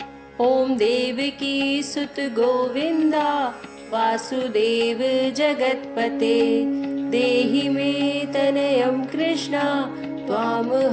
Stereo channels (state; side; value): identical; both; correlation 1.00